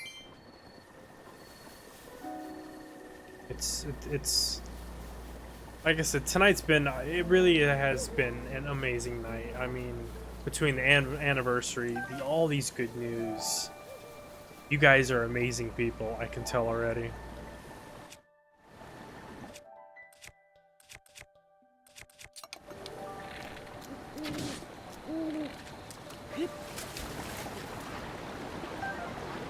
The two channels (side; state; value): both; identical; correlation 1.00